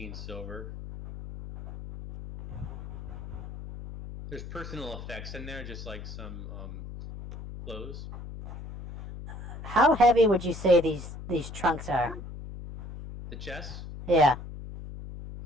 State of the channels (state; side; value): noise; left; hum, 11 dB below the sound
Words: silver. There's personal effects in there, just like some clothes. How heavy would you say these trunks are? The chest, Yeah.